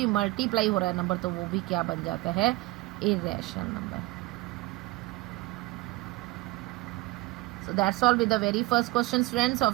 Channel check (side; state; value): left; quieter; 20.1 dB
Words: मल्टीप्लाई हो रहा है नंबर, तो वो भी क्या बन जाता है? Irrational number. So that's all with the very first question, friends,